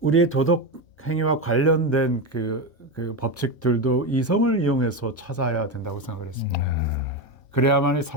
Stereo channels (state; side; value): normal; both; correlation 0.15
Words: 우리의 도덕 행위와 관련된 그 법칙들도 이성을 이용해서 찾아야 된다고 생각을 했습니다. 그래야만이